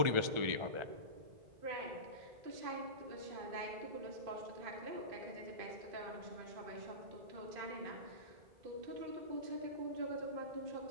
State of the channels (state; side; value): late; left; 1.4 ms